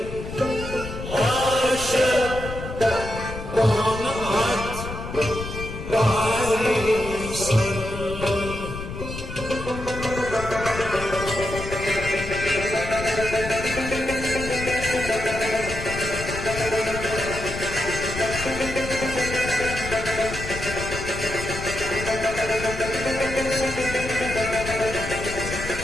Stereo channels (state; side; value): noise; left; rumble, 8 dB below the sound